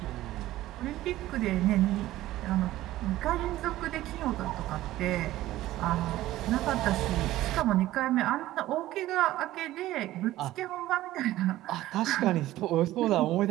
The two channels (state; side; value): quieter; left; 15.4 dB